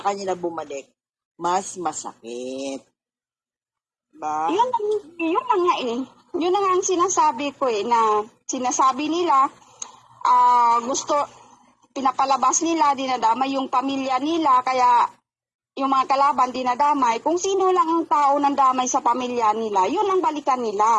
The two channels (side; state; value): both; identical; correlation 1.00